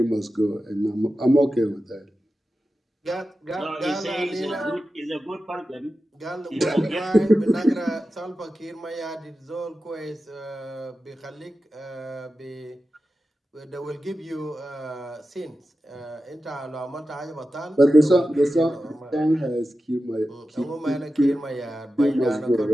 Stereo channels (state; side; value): normal; both; correlation 0.93